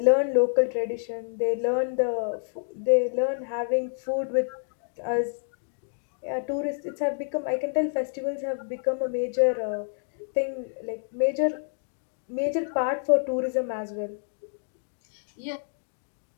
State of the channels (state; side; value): silent; right; digital silence